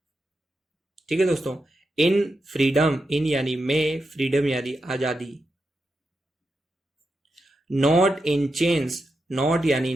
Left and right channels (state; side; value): normal; both; correlation 0.87